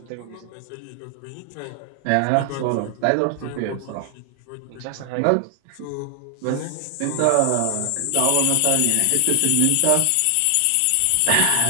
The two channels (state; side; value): different; both; correlation 0.00